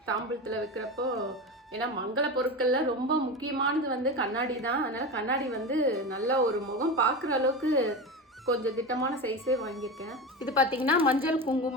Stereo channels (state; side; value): normal; both; correlation 0.23